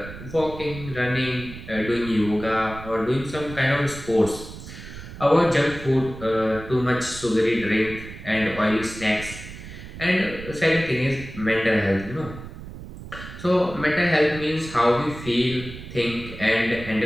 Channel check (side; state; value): right; noise; rumble, 13 dB below the sound